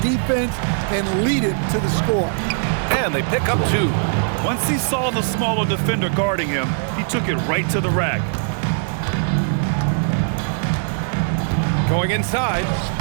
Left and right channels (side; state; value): left; silent; 55 dB below the other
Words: defense and lead it to the score. And they pick up 2. Once he saw the smaller defender guarding him, he took it right to the rack. Going inside.